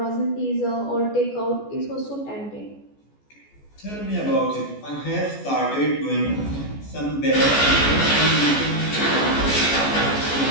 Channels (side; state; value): right; late; 14 ms